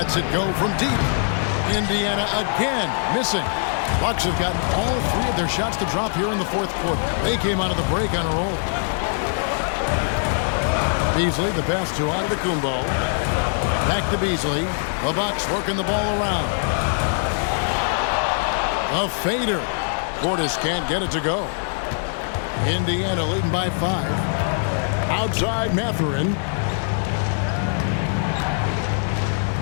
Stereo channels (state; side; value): silent; right; digital silence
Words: it go from deep. Indiana again missing. Bucks have gotten all 3 of their shots to drop here in the 4th quarter. They came out of the break on a roll. Beasley, the pass to Antetokounmpo. Back to Beasley. The Bucks working the ball around. A fader. Portis can't get it to go. Indiana leading by 5. Outside Mathurin.